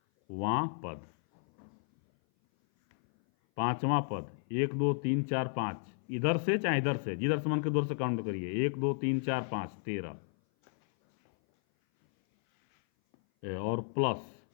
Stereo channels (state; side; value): silent; right; 56 dB below the other